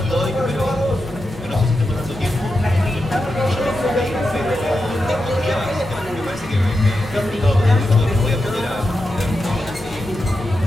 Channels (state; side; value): normal; both; correlation 0.88